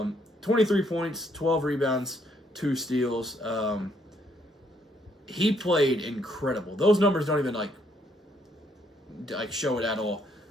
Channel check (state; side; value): normal; both; correlation 0.70